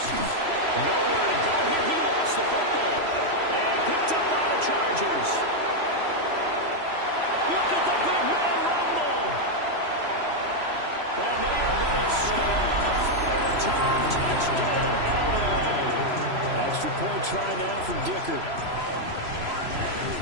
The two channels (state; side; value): late; left; 3.0 ms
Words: Nowhere to go here. He lost the football. And picked up by the Chargers. Look at the big man rumble. And they are going to score on the final return. Touchdown, LA. Extra point try now from Dicker.